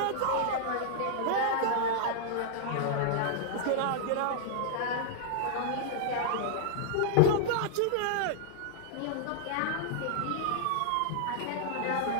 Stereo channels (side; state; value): both; different; correlation -0.01